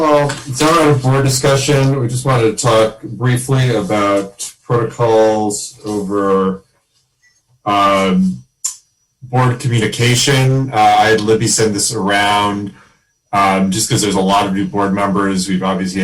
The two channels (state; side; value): identical; both; correlation 1.00